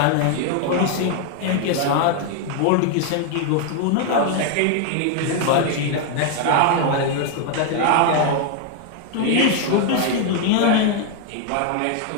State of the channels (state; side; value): different; both; correlation 0.00